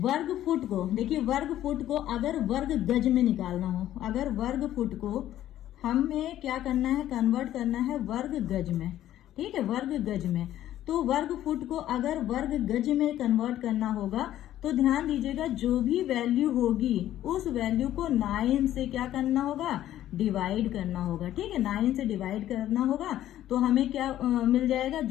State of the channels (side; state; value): right; quieter; 12.7 dB